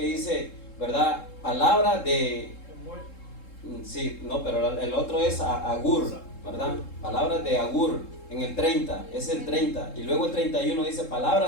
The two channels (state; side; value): late; right; 3.7 ms